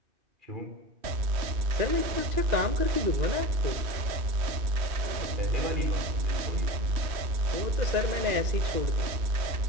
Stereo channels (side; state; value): left; late; 2.6 ms